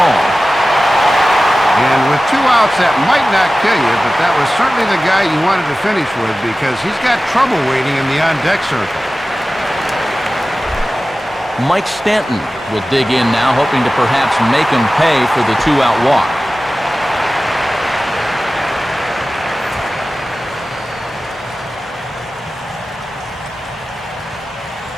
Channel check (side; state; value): both; normal; correlation 0.96